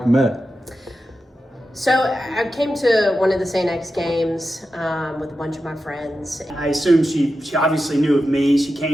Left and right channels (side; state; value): both; normal; correlation 0.91